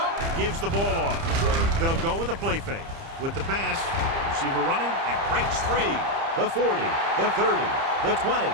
Gives the ball off. They'll go with a play fake. With the pass, receiver running and breaks free. The 40, the 30, the 20,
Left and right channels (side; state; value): left; late; 30 ms